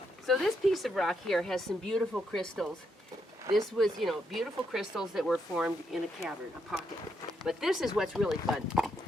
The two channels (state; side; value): normal; both; correlation 0.79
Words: So this piece of rock here has some beautiful crystals. This was, you know, beautiful crystals that were formed in a cavern, a pocket. But this is what's really fun.